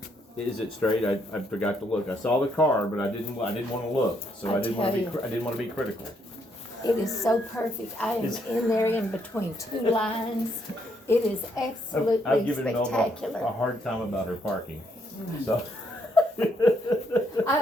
Is it straight? I forgot to look. I saw the car, but I didn't want to look. So I I didn't want to be tell you. I didn't want to be critical. It is so perfect. I am Is- in there in between two lines. It is absolutely I've given Melba a spectacular. hard time about her parking. So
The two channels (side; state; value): both; normal; correlation 0.73